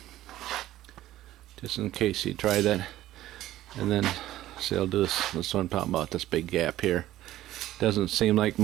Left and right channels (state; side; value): quieter; left; 14.5 dB